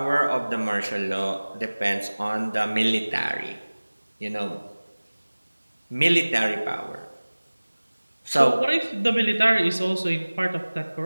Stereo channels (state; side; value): inverted; both; correlation -1.00